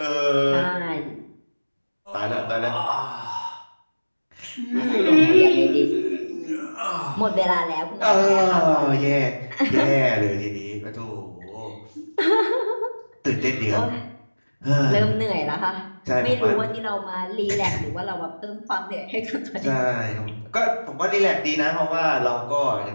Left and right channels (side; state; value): both; inverted; correlation -1.00